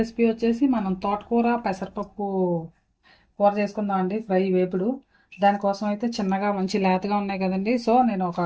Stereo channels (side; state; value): both; identical; correlation 1.00